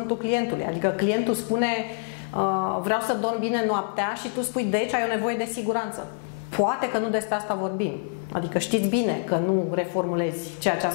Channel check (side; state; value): right; silent; digital silence